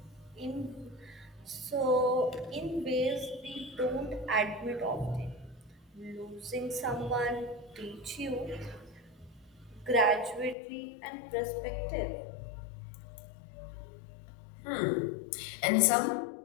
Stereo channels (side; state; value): right; drops out; at 10.6 s